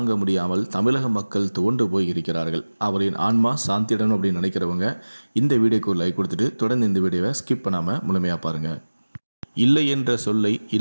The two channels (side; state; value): both; inverted; correlation -1.00